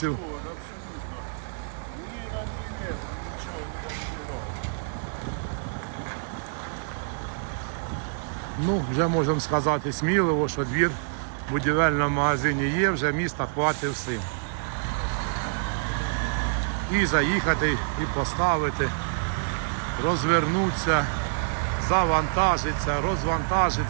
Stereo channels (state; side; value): silent; left; digital silence